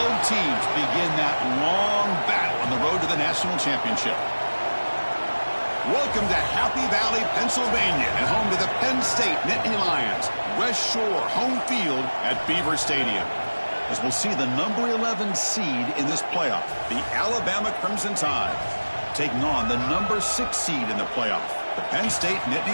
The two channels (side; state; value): both; inverted; correlation -1.00